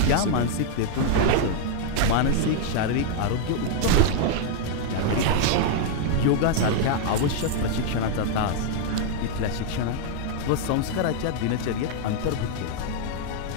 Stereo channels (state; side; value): different; both; correlation 0.00